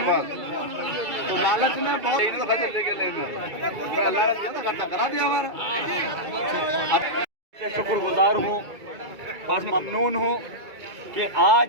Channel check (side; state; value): left; late; 2.3 ms